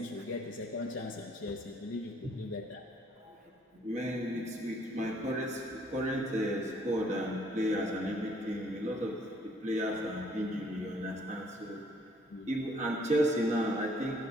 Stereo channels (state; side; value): normal; both; correlation 0.63